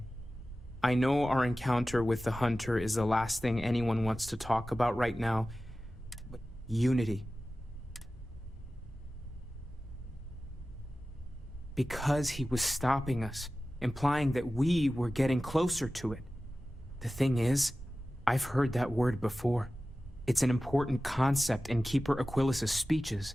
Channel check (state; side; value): normal; both; correlation 0.95